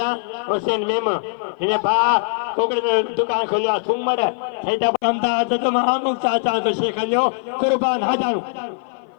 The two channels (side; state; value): right; silent; 56 dB below the other